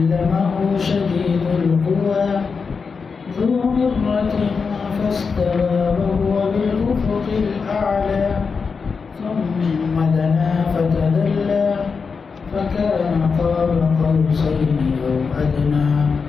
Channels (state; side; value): quieter; right; 5.2 dB